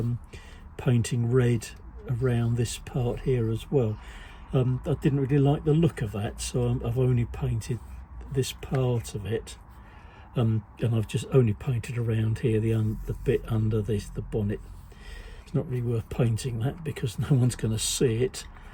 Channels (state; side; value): identical; both; correlation 1.00